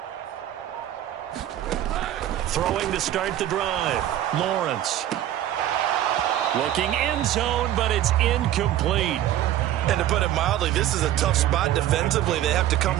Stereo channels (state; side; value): quieter; left; 12.4 dB